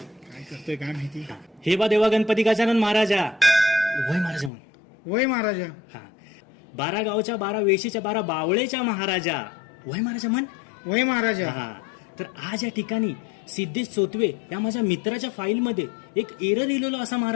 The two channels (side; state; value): right; drops out; at 4.5 s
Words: काय करतोय काय माहिती. हे बा देवा गणपती गजानन महाराजा, वय महाराजा म्हण. वय महाराजा. हा, 12 गावच्या 12 वेशीच्या 12 बावळेच्या महाराजा, वय महाराजा म्हण. वय महाराजा. हा, तर आज या ठिकाणी सिद्धेश चोतवे या माझ्या मित्राच्या फाईलमध्ये एक एरर लिहिलेलो असा